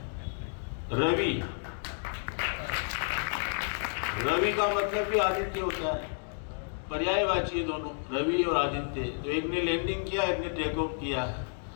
रवि का मतलब भी आदित्य होता है, पर्यायवाची है दोनों, रवि और आदित्य। तो एक ने लैंडिंग किया, एक ने टेक ऑफ किया है।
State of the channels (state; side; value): silent; right; 57 dB below the other